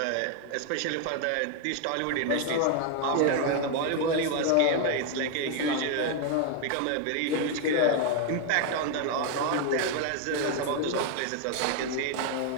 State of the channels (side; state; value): both; different; correlation 0.01